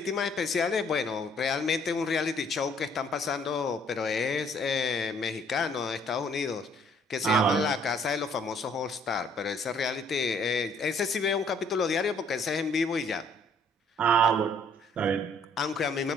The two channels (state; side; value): normal; both; correlation 0.62